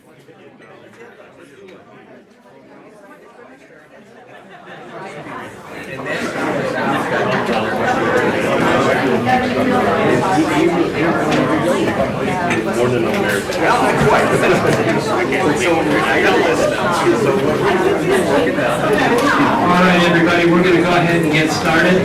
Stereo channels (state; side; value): identical; both; correlation 1.00